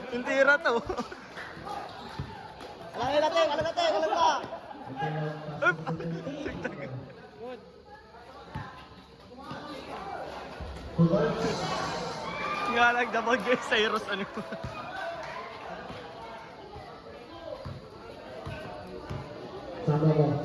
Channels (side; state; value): both; identical; correlation 1.00